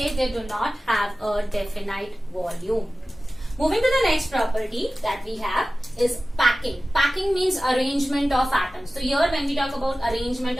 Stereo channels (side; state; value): both; normal; correlation 0.96